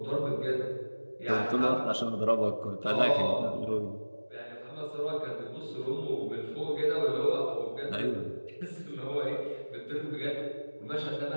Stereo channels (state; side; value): inverted; both; correlation -1.00